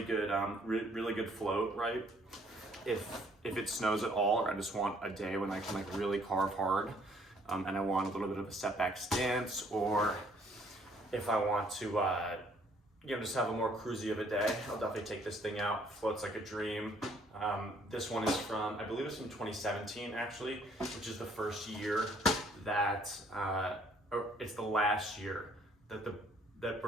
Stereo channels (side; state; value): both; normal; correlation 0.63